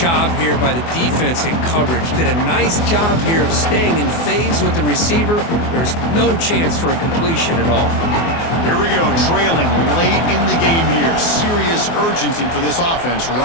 here by the defense in coverage. Did a nice job here of staying in phase with the receiver. There's no chance for a completion at all. Here we go, trailing late in the game here. Serious urgency for this offense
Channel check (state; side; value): late; right; 24 ms